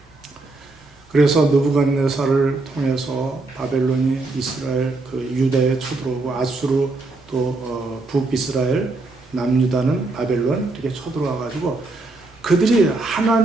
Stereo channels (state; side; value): quieter; left; 3.2 dB